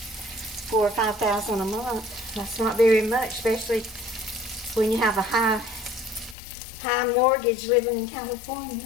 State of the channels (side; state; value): right; drops out; at 6.4 s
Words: $4,000 or $5,000 a month. That's not very much, especially when you have a high mortgage living in California.